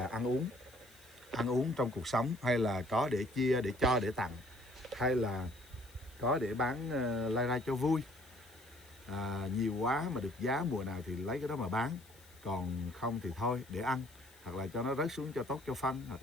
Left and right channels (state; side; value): noise; left; hiss, 25 dB below the sound